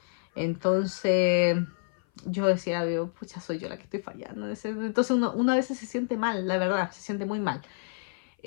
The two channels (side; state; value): right; silent; 56 dB below the other